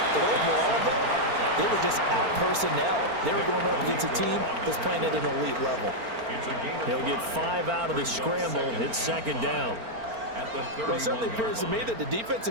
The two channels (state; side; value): late; left; 4.4 ms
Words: But overall, though, they were just out personnel. They were going up against a team that's playing at an elite level. He'll get 5 out of the scramble. It's second down. Well, it certainly appears to me that the